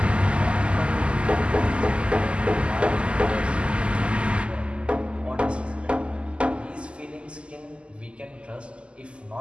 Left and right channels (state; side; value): late; left; 0.053 ms